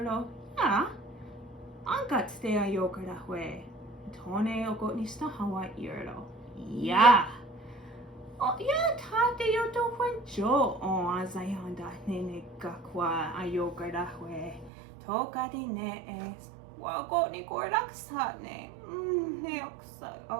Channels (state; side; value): drops out; left; at 14.7 s